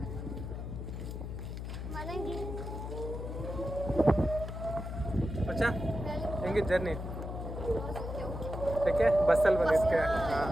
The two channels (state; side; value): noise; left; hum, 6 dB below the sound